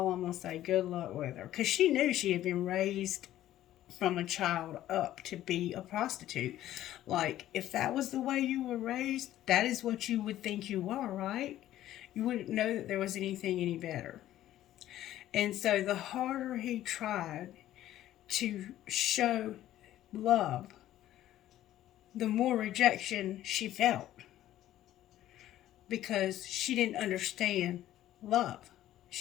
I'm going to say, good luck with her. Because she knew she had been raised from a child up to be a prostitute. Like, if that was the way you were raised, that is what you would think you were, right? You wouldn't know that there was anything any better. And so the harder he tried to show love, the more rejection she felt, because she didn't understand love.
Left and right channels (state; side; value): quieter; right; 13.3 dB